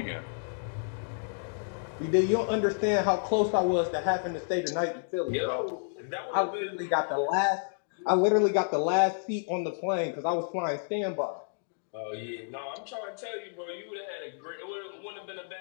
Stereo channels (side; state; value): right; silent; digital silence